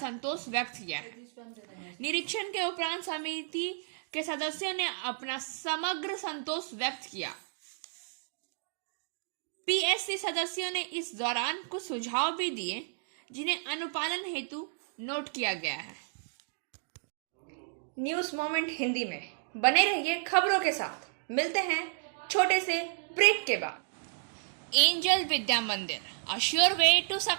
व्यक्त किया है। निरीक्षण के उपरांत समिति के सदस्यों ने अपना समग्र संतोष व्यक्त किया। पीएससी सदस्यों ने इस दौरान कुछ सुझाव भी दिए, जिन्हें अनुपालन हेतु नोट किया गया है। न्यूज मोमेंट हिंदी में बने रहिए खबरों के साथ। मिलते हैं छोटे से ब्रेक के बाद। Angel Vidya Mandir, a sure way to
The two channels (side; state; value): left; silent; digital silence